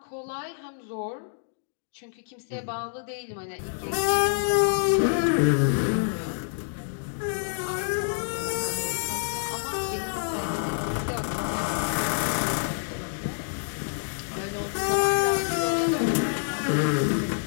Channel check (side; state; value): right; silent; digital silence